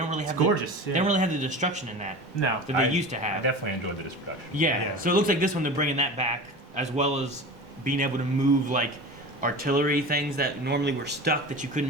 really have. Gorgeous. They don't really have the destruction in that. No. That they used to have. I definitely enjoyed the destruction. Yeah. So it looks like this one they're bringing that back, as well as being able to move like artillery things that normally were stuck that you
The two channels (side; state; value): both; normal; correlation 0.33